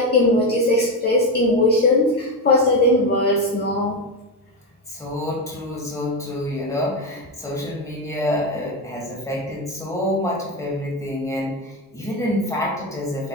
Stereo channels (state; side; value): normal; both; correlation 0.13